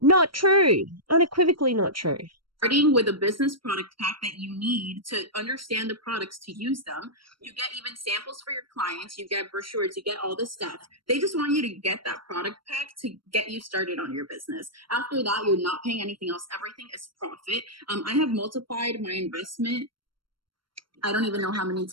not true. Unequivocally not true. Starting with a business product pack that you need to understand the products, to use them. You get even samples for your clients, you get brochures, you get all this stuff. They just want you to get that product pack to get you started on your business. After that, you're not paying anything else. Everything is profit. I have multiplied my investment. I don't even know how many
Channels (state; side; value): late; left; 0.73 ms